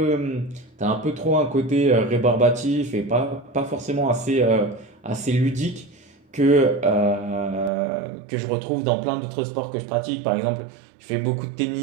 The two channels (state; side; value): drops out; left; at 7.7 s